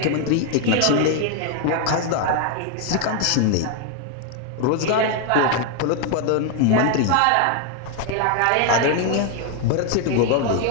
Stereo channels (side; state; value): both; different; correlation 0.01